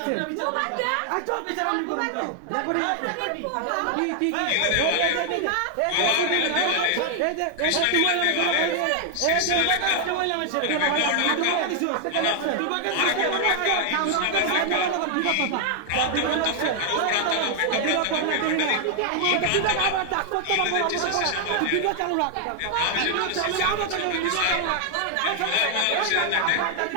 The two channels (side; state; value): both; different; correlation 0.00